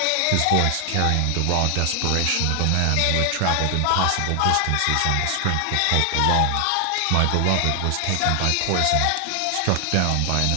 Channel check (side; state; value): both; different; correlation 0.00